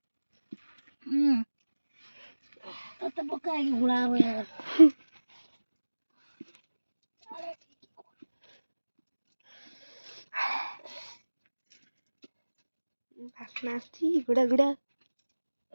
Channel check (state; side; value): inverted; both; correlation -1.00